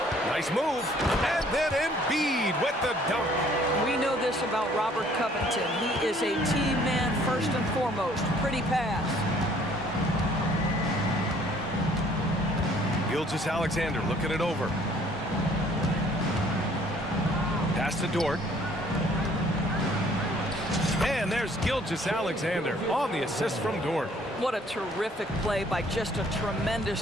Nice move. And then Embiid with the dunk. We know this about Robert Covington. He is a team man first and foremost. Pretty pass. Gilgeous-Alexander looking it over. Pass to Dort. And there's Gilgeous-Alexander on the assist from Dort. What a terrific play by just a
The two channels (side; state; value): both; normal; correlation 0.59